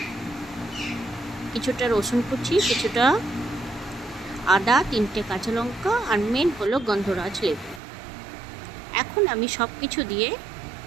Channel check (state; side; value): drops out; left; at 7.8 s